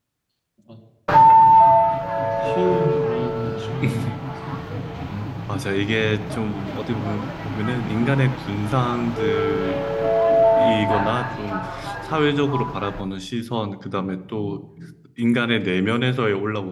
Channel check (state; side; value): identical; both; correlation 1.00